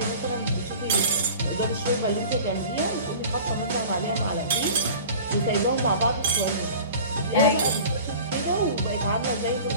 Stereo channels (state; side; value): inverted; both; correlation -0.41